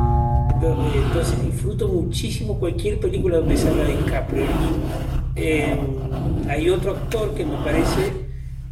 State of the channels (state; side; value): identical; both; correlation 1.00